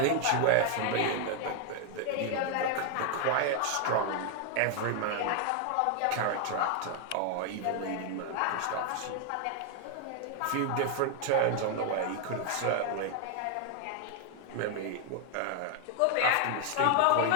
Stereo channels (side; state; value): both; different; correlation 0.00